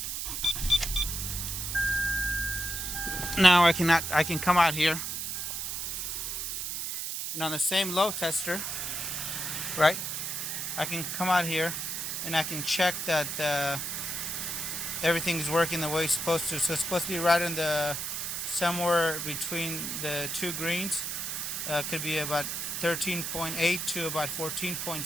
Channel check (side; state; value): right; noise; hiss, 3 dB below the sound